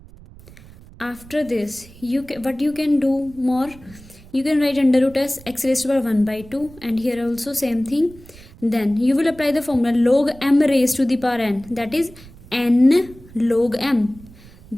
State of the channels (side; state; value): right; noise; rumble, 21 dB below the sound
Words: After this what you can do more, you can write under root as x raised to the power 1 by 2, and here also same thing. Then you will apply the formula log m raised to the power n, that is n log m.